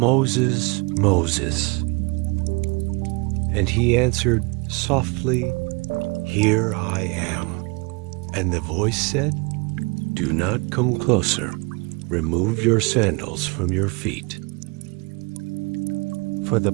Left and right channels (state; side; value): quieter; left; 28.5 dB